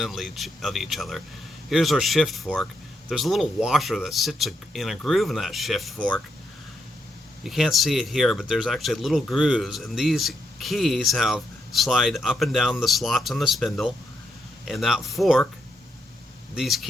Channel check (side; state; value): both; normal; correlation 0.80